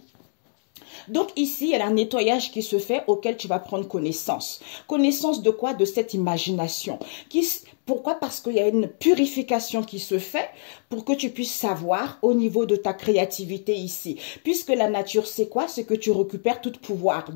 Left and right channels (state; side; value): silent; right; digital silence